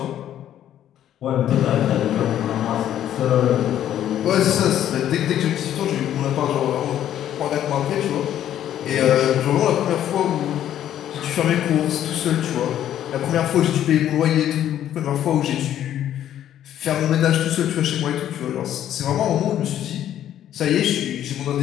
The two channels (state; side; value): quieter; right; 11.2 dB